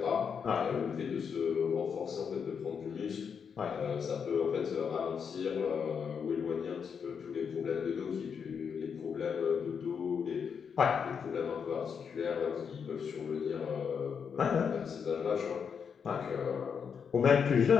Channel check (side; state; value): right; quieter; 6.7 dB